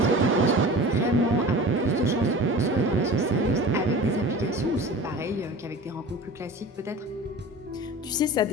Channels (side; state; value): both; normal; correlation 0.37